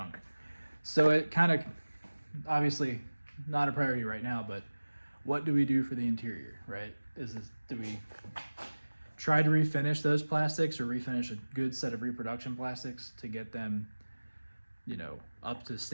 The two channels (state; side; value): inverted; both; correlation -1.00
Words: So it kind of, obviously, not a priority right now, but what do we do for the interior, right? Do we try to refinish those plastics, or refinish a good set of reproduction plastics to get them, up to